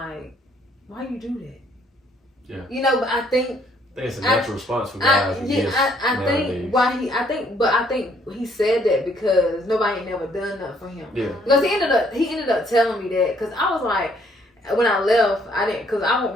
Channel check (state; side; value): normal; both; correlation 0.66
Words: why you do that? Yeah. You know, but I think it's a natural response for guys. I think he said that because nobody ain't never done that for him. Yeah. Because he ended up telling me that because I was like, when I left, I didn't, because I wasn't